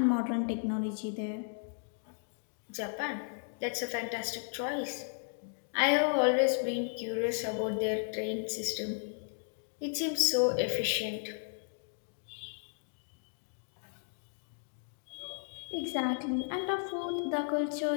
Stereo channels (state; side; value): silent; right; digital silence